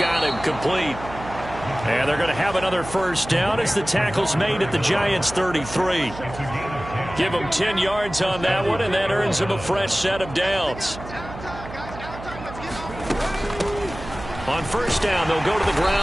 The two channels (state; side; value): noise; right; hum, 13 dB below the sound